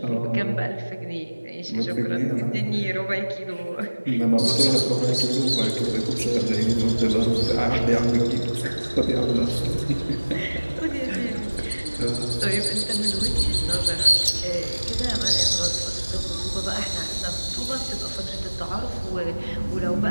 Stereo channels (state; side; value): inverted; both; correlation -1.00